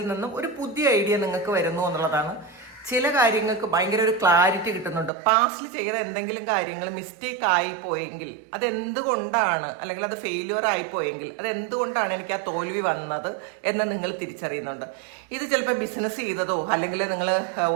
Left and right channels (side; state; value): left; drops out; at 5.1 s